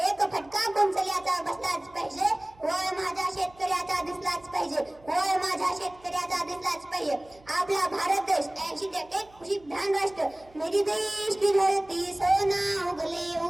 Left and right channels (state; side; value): noise; right; hum, 27 dB below the sound